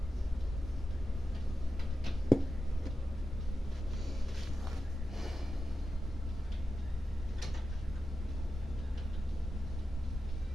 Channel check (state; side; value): normal; both; correlation 0.91